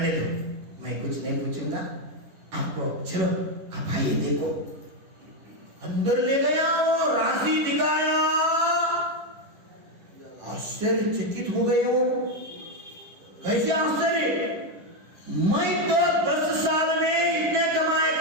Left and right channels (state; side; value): late; left; 10 ms